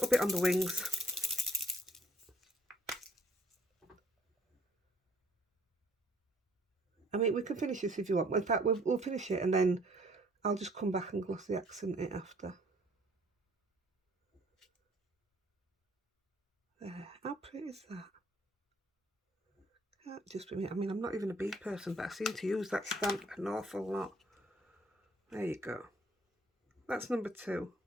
bit on the wings. I mean, we can finish this if you want. In fact, we'll finish it and then I'll just come back and glossy accent it after. There. How pretty is that? Can't just be me. I mean, I'm not even a bee person, but I seem to use that stamp an awful lot. There you go. That's number 2.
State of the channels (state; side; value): normal; both; correlation 0.60